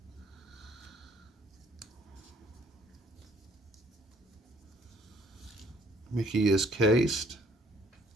Mickey is cased.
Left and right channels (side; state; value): both; normal; correlation 0.62